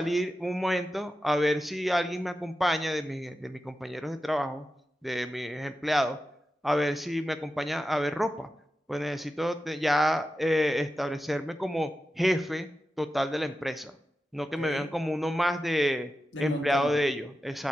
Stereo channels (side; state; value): both; normal; correlation 0.91